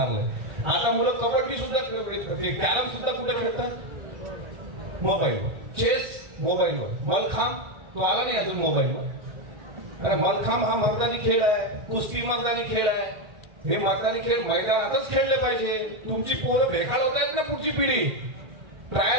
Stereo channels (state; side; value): late; left; 1.5 ms